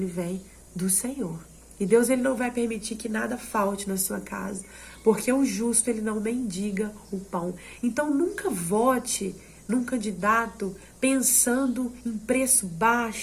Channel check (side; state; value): both; identical; correlation 1.00